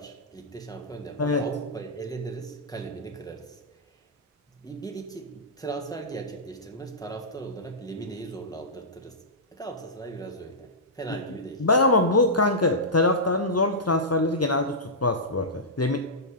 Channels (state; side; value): normal; both; correlation -0.14